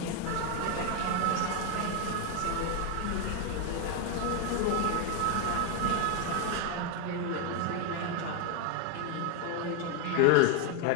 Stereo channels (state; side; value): different; both; correlation 0.01